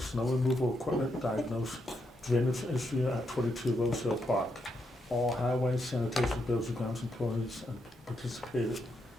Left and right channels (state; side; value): normal; both; correlation 0.81